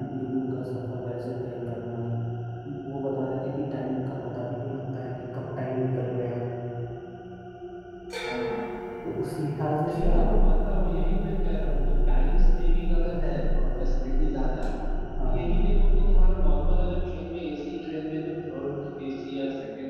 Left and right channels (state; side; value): identical; both; correlation 1.00